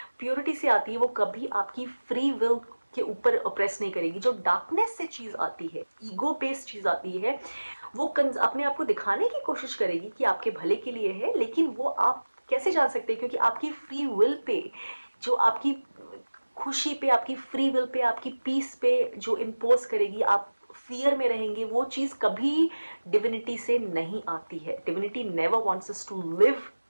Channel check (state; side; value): inverted; both; correlation -1.00